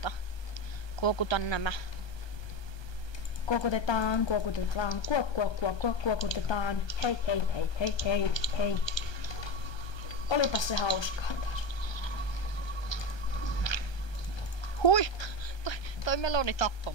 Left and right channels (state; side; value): late; right; 1.2 ms